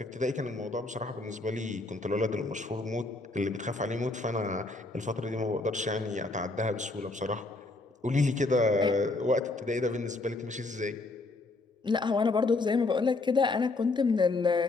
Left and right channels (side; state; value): right; quieter; 3.2 dB